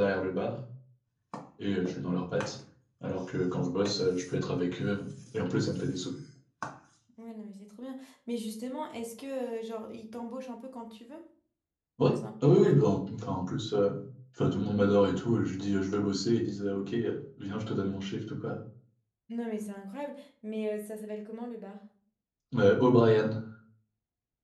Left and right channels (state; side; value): identical; both; correlation 1.00